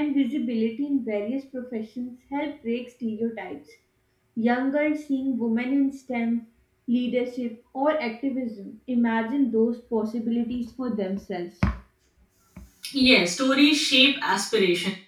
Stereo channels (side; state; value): both; identical; correlation 1.00